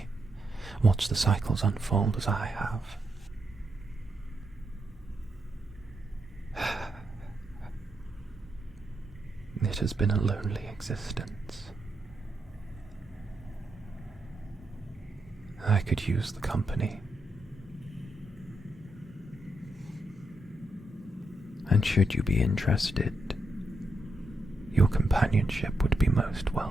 watch the cycles unfold as I have. It has been a lonely existence. I could use the company. And should you be interested, your companionship would be most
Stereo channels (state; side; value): normal; both; correlation 0.82